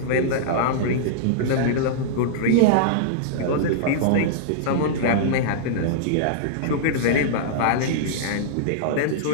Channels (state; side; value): different; both; correlation -0.02